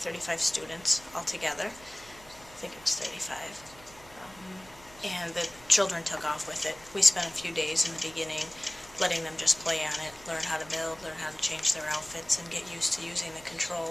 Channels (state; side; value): noise; right; hum, 23 dB below the sound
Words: students altogether. I think it was 35. And the children took off with it. We spent a few days in the beginning letting them just play on it, learn how to build, learn how to change their outfits, and get used to using the